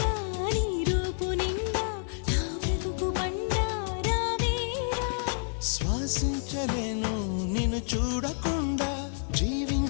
నీ రూపు నిండా నా బ్రతుకు బండ రావేరా శ్వాసించలేను నిన్ను చూడకుండా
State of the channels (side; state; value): right; silent; digital silence